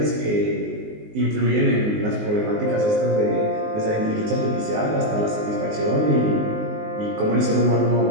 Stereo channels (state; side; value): late; left; 19 ms